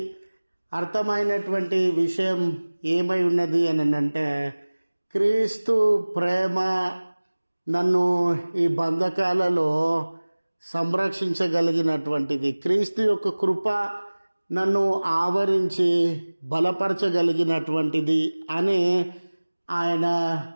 అర్థమైనటువంటి విషయం ఏమై ఉన్నది అని అంటే, క్రీస్తు ప్రేమ నన్ను ఈ బంధకాలలో సంరక్షించగలిగినటువంటిది, క్రీస్తు యొక్క కృప నన్ను ఆవరించి బలపరచగలిగినటువంటిది అని ఆయన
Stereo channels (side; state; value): both; inverted; correlation -1.00